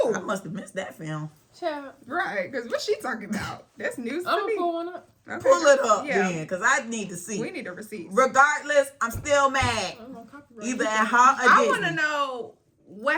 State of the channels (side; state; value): both; identical; correlation 1.00